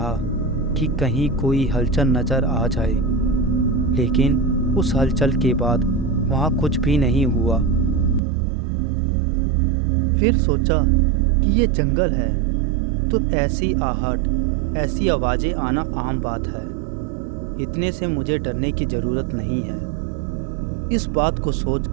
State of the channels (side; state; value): left; drops out; at 8.2 s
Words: कि कहीं कोई हलचल नज़र आ जाए, लेकिन उस हलचल के बाद वहाँ कुछ भी नहीं हुआ। फिर सोचा कि ये जंगल है तो ऐसी आहट, ऐसी आवाज़ें आना आम बात है। इतने से मुझे डरने की ज़रूरत नहीं है। इस बात को